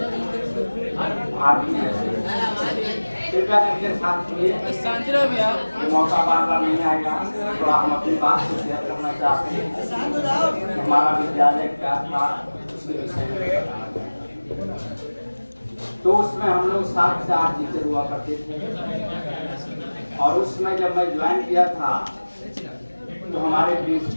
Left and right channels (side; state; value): both; inverted; correlation -1.00